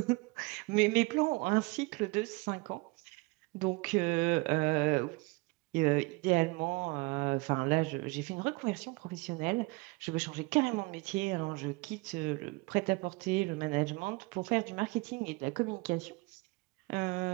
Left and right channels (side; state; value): left; quieter; 25.6 dB